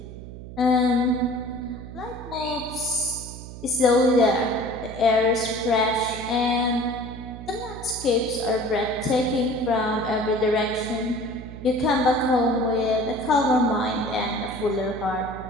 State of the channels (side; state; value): right; noise; hum, 13 dB below the sound